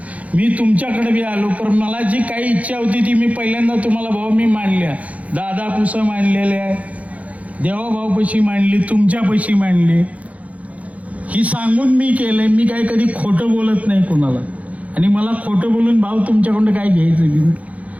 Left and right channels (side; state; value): left; late; 0.068 ms